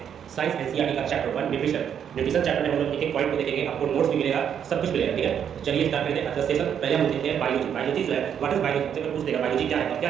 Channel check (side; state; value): left; quieter; 8.6 dB